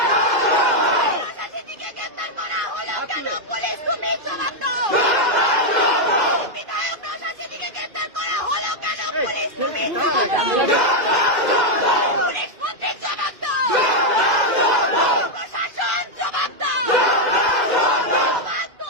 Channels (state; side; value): late; left; 2.1 ms